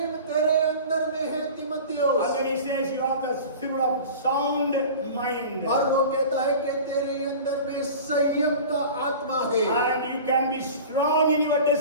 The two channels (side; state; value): both; inverted; correlation -0.37